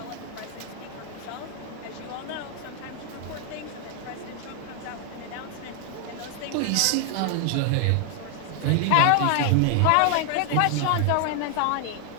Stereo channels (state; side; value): different; both; correlation 0.00